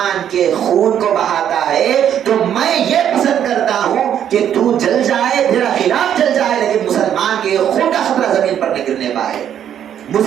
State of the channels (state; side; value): quieter; left; 9.7 dB